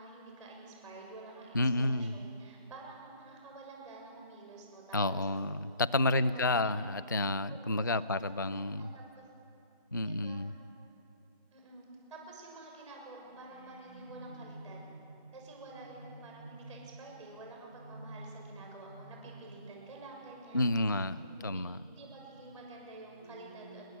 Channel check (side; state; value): both; inverted; correlation -0.59